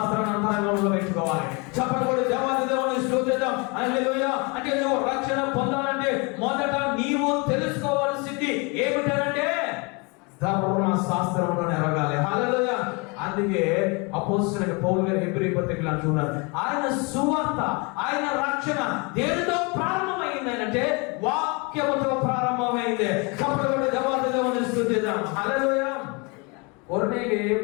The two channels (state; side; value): quieter; right; 30.0 dB